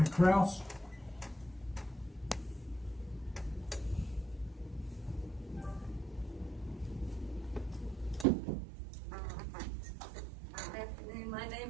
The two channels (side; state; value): left; drops out; at 8.2 s